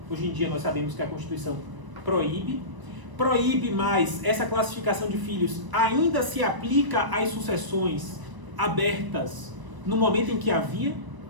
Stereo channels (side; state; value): left; late; 1.0 ms